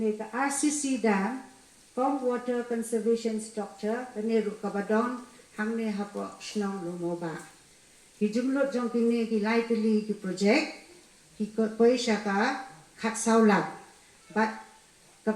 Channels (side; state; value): both; identical; correlation 1.00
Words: ke RCC dam kom water conservation structure kani ru ke badong hangne hapok snong lumoba ki jumlot jong kini ki lai teli ki projek ki koi shaka khat saulak bat